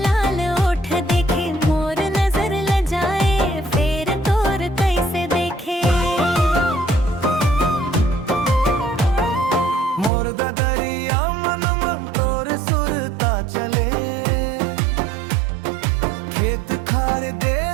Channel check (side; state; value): left; drops out; at 10.1 s